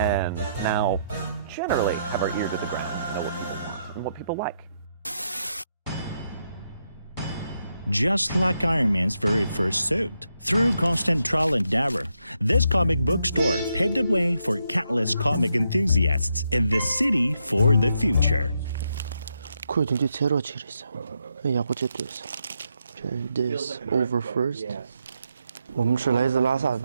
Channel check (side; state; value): both; inverted; correlation -0.80